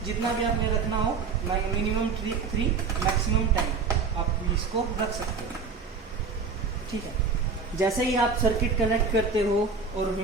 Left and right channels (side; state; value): left; quieter; 5.0 dB